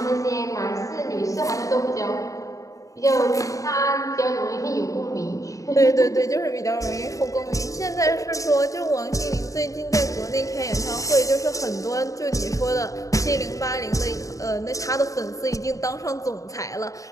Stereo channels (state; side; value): late; right; 0.16 ms